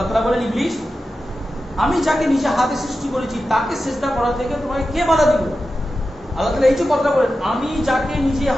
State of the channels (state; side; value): normal; both; correlation 0.92